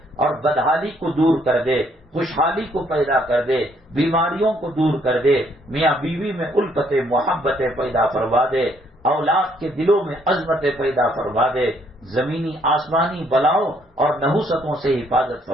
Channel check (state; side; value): normal; both; correlation 0.68